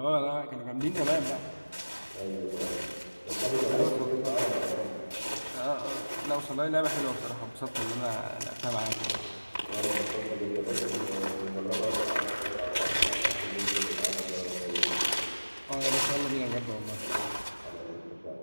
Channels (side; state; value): both; inverted; correlation -1.00